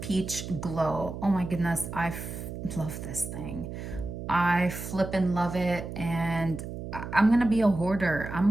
Glow. Oh my goodness, I love this thing. I flippin' love it, and I'm gonna be a hoarder. I'm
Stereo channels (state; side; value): noise; right; hum, 8 dB below the sound